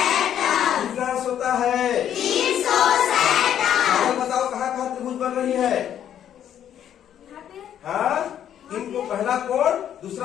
कितना अंश होता है? 360। बताओ कहाँ कहाँ त्रिभुज बन रही है? हाँ, इनको पहला कोण,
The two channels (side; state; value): right; quieter; 10.1 dB